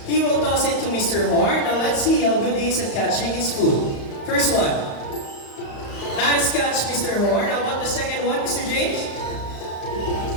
He will toss it to Mr. Horn. Now let's see how good he is at catching his food. First one. Nice catch, Mr. Horn. How about the second one, Mr. James?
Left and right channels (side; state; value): right; late; 35 ms